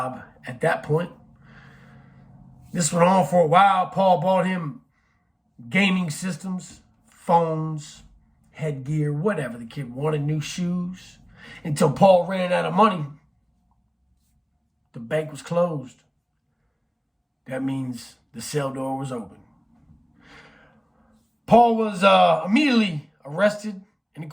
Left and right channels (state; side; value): identical; both; correlation 1.00